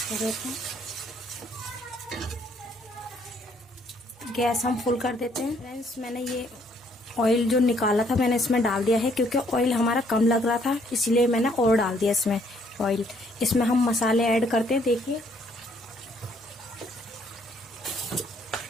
कर देते हैं। गैस हम फुल कर देते हैं। फ्रेंड्स, मैंने ये ऑयल जो निकाला था मैंने इसमें डाल दिया है, क्योंकि ऑयल हमारा कम लग रहा था, इसलिए मैंने और डाल दिया इसमें ऑयल। इसमें हम मसाले ऐड करते हैं। देखिए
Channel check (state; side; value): normal; both; correlation 0.66